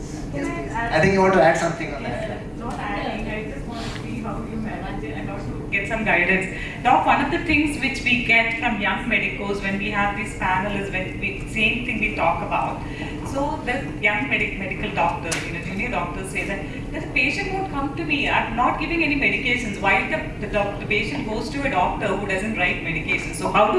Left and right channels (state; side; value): identical; both; correlation 1.00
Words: Yes, please. I think you want to add something on that. Not adding, I just want to see how you manage it and also get some guidance. Doc, one of the things which we get from young medicos when we have these panels, same thing we talk about. So the young medical doctors, junior doctors say that the patient won't come to me, I'm not giving any medications. Why the patient goes to a doctor who doesn't write medications? So how